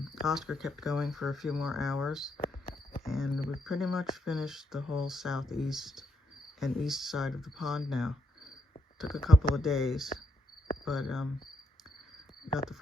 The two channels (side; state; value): both; normal; correlation 0.76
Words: Oscar kept going for a few more hours, and we pretty much finished the whole southeast and east side of the pond now. Took a couple of days, but got the